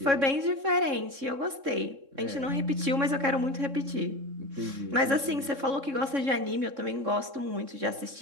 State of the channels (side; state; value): left; late; 3.6 ms